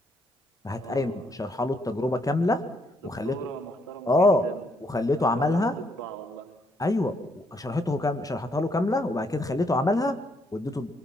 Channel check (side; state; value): both; normal; correlation 0.73